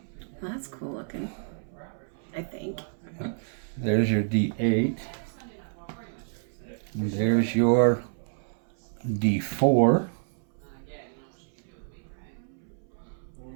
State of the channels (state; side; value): silent; left; 59 dB below the other